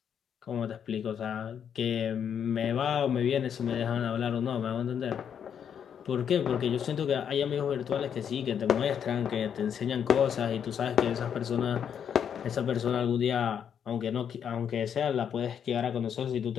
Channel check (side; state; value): right; quieter; 8.2 dB